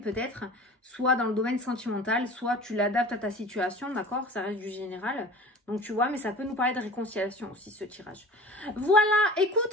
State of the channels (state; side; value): normal; both; correlation 0.40